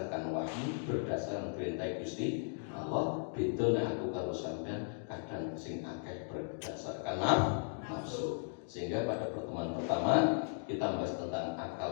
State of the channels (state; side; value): silent; right; digital silence